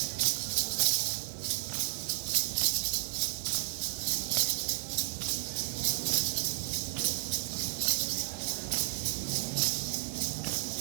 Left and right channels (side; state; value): left; silent; 56 dB below the other